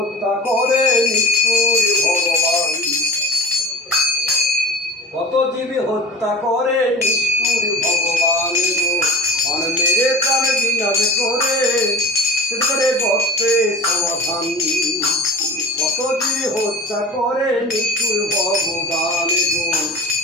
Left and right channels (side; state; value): both; normal; correlation 0.37